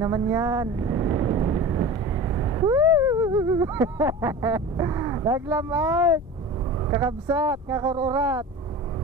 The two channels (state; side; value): normal; both; correlation 0.34